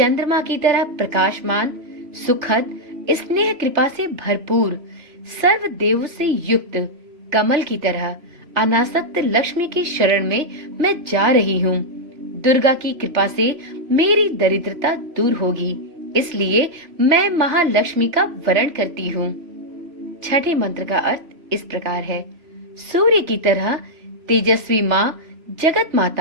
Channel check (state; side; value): late; left; 3.3 ms